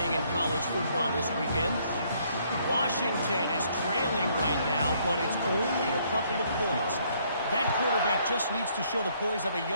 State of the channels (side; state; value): both; inverted; correlation -0.67